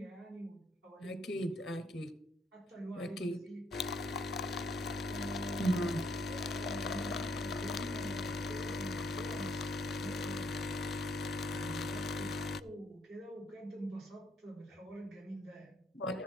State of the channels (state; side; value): normal; both; correlation 0.70